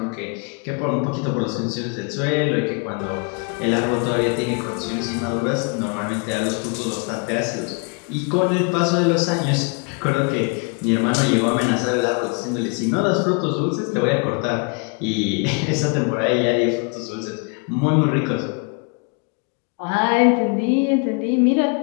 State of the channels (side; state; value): right; quieter; 35.7 dB